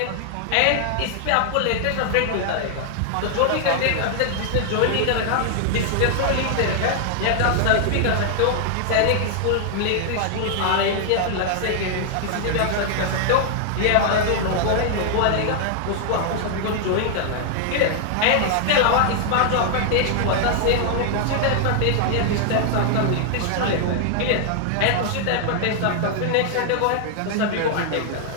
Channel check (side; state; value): both; different; correlation 0.00